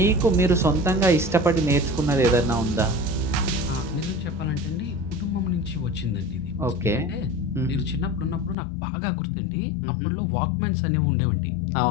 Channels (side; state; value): right; drops out; at 8.6 s